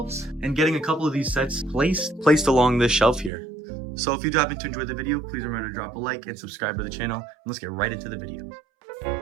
and getting a couple of these sets placed along this shelf here. So if you do happen to enjoy the video, please remember to drop a like and subscribe to the channel. And let's get right into the video.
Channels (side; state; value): left; drops out; at 3.3 s